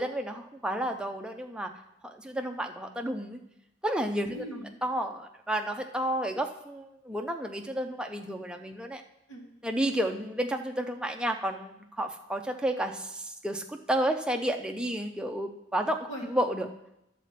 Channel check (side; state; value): both; normal; correlation 0.70